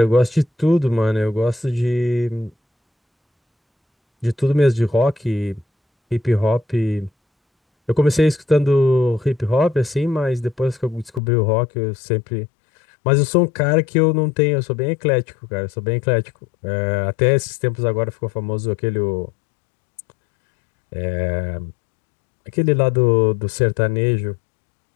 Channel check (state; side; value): drops out; right; at 11.2 s